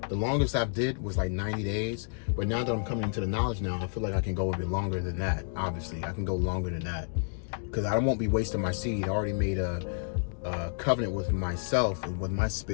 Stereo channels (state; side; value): silent; right; digital silence